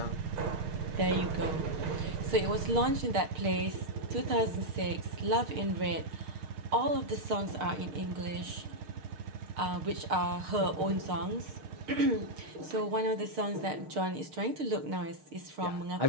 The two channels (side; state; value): left; late; 6.5 ms